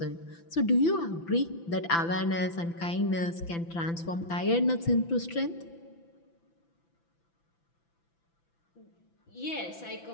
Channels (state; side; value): late; right; 5.9 ms